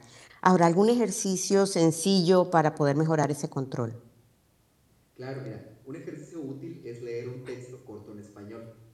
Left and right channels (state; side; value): identical; both; correlation 1.00